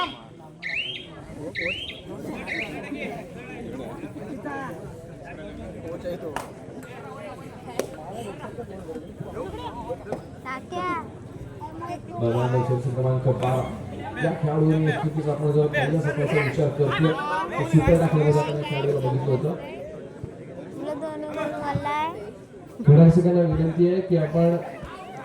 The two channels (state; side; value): identical; both; correlation 1.00